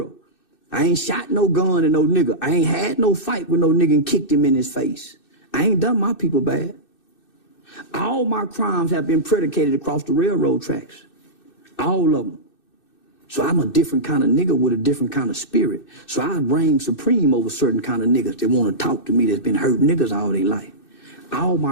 I ain't shot no gun at no nigga. I ain't had no fight with no nigga and kicked him in his face. I ain't done my people bad. All my crimes have been predicated across the railroad tracks. All of them. So I'm a different kind of nigga with a different kind of spirit. So I reign supreme over certain kind of niggas that want to talk to me that's been hurting niggas all their life. All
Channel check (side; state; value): right; late; 2.6 ms